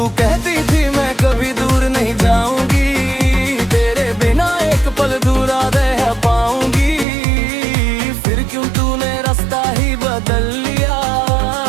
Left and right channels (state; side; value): drops out; left; at 7.1 s